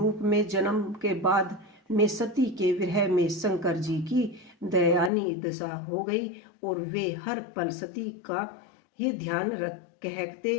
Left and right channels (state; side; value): drops out; right; at 5.1 s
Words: में जन्म के बाद में सती के विरह में शंकर जी की दयानी दशा हो गई और वे हर पल सती का ही ध्यान